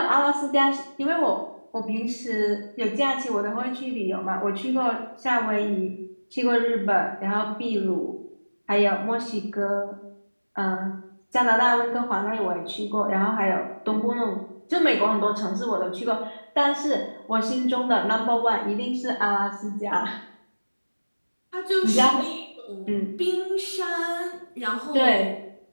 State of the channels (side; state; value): both; inverted; correlation -1.00